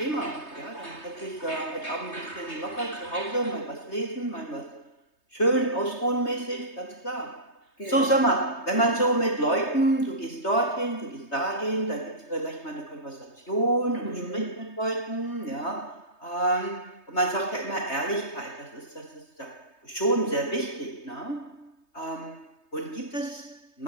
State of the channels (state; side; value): late; right; 3.3 ms